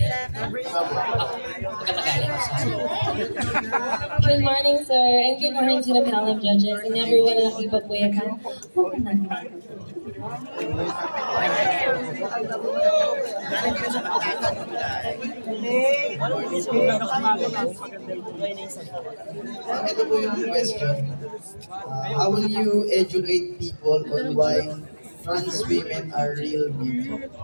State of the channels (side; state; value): both; inverted; correlation -1.00